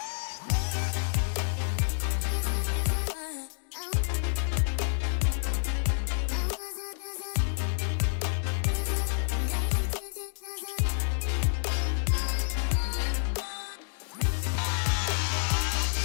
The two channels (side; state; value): right; silent; digital silence